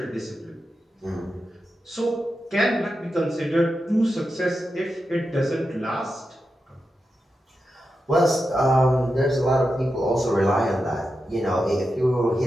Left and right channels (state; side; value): normal; both; correlation 0.89